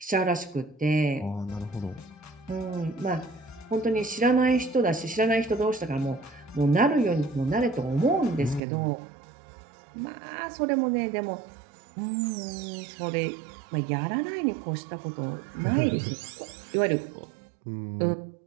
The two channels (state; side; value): drops out; left; at 8.6 s